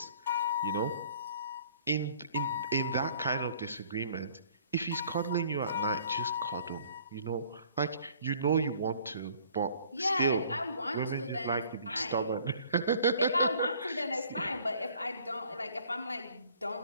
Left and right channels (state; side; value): inverted; both; correlation -0.55